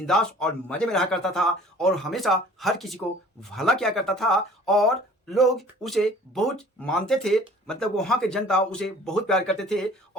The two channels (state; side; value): normal; both; correlation 0.49